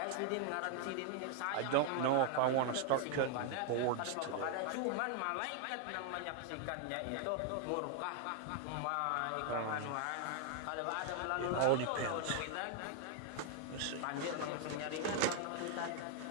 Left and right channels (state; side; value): different; both; correlation 0.00